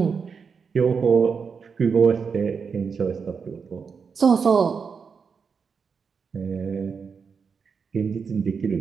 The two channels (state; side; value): quieter; left; 5.8 dB